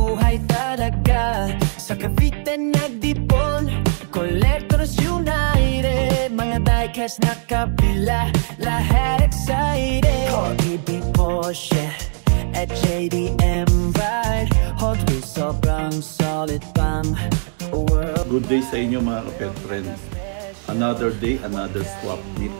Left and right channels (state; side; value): silent; left; digital silence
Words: talaga. Sa Cavite nagdipon, Collectors United, mga diecast na kabila, lahat excited. Corgi, Porsche, at JDM Ride, Hot Wheels sobrang solid pang world. Good day sa inyo mga kapet friends. Another day, another swap meet.